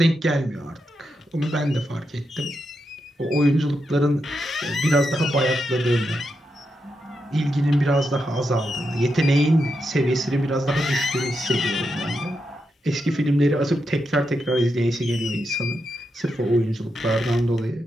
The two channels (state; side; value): normal; both; correlation 0.85